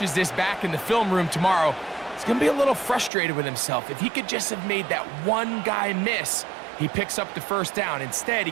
this back in the film room tomorrow, he's going to be a little frustrated with himself. If he could just have made that one guy miss, he picks up the first down. Instead, he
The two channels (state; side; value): drops out; left; at 3.1 s